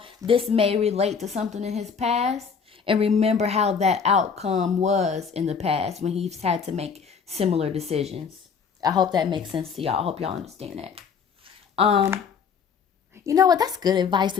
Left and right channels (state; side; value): quieter; right; 6.2 dB